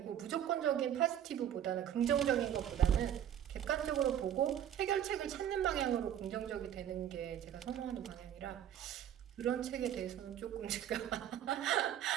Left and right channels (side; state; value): left; quieter; 10.3 dB